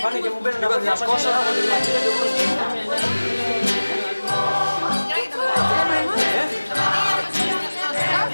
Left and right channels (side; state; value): both; inverted; correlation -1.00